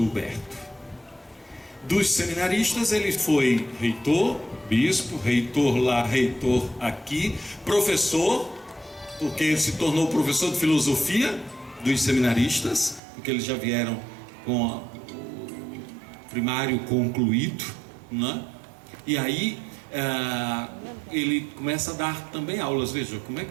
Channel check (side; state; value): left; drops out; at 13.0 s